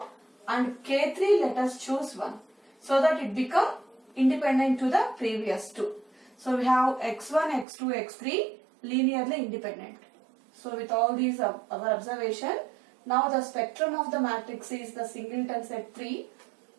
and K3 let us choose 1, so that it become independent to the previous two. So we have x1, x2, x3 linearly independent. So with all these our observation, now the spectrum of the matrix is the singleton set 3.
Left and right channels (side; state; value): left; drops out; at 7.7 s